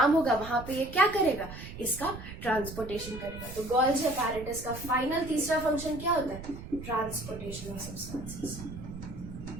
होगा, वहां पे ये क्या करेगा? इसका ट्रांसपोर्टेशन करेगा. तो गोल्गी apparatus का फाइनल तीसरा फंक्शन क्या होता है? Transportation of substances.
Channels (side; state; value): right; noise; rumble, 11 dB below the sound